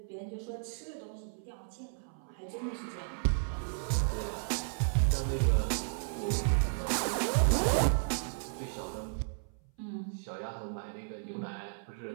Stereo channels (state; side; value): silent; left; 55 dB below the other